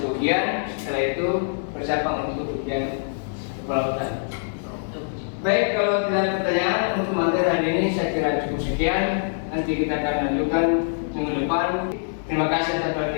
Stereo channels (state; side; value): silent; right; digital silence